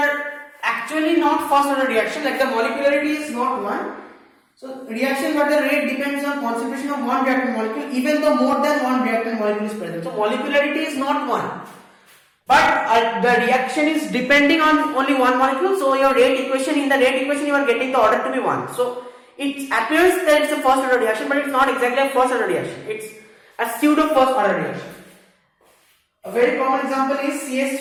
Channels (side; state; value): both; identical; correlation 1.00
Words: actually not first order reaction, like the molecularity is not 1. So reaction where the rate depends on concentration of one reactant molecule, even though more than one reactant molecule is present. So molecularity is not 1. But the reaction is depending on only one molecule. So your rate equation, in the rate equation you are getting the order to be 1. So it appears that it's a first order reaction, but it's not exactly a first order reaction. It's a pseudo first order reaction. A very common example is